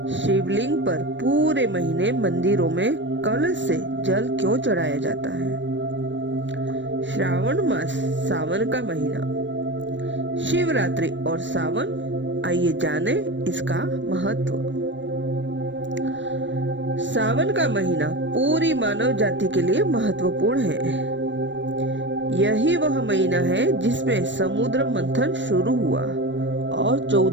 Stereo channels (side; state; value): left; late; 0.54 ms